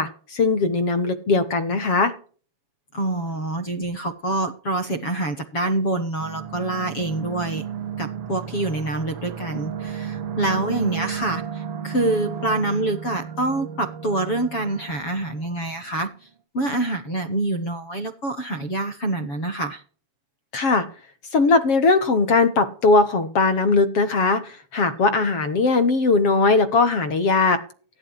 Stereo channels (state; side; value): late; right; 7.1 ms